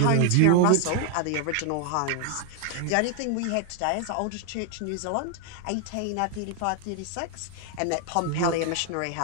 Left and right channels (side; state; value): both; different; correlation 0.00